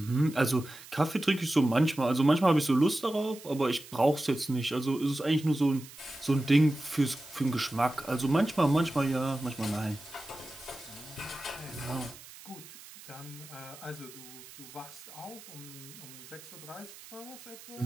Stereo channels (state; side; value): noise; right; hiss, 18 dB below the sound